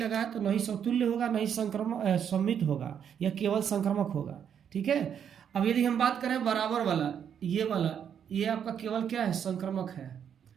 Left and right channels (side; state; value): left; quieter; 8.4 dB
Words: है तो नहीं समतुल्य होगा, नहीं संक्रमक सममित होगा, या केवल संक्रमक होगा। ठीक है, अब यदि हम बात करें बराबर वाला, ये आपका केवल क्या है? संक्रमक है,